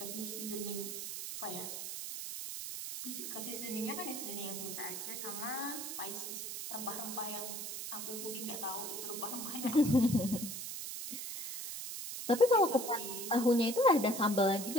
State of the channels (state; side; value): noise; right; hiss, 6 dB below the sound